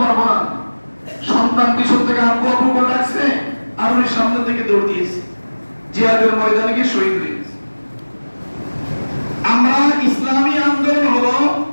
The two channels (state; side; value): inverted; both; correlation -1.00